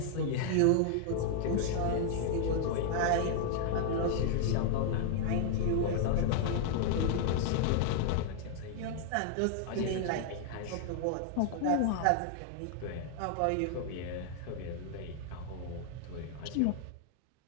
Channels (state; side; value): different; both; correlation -0.01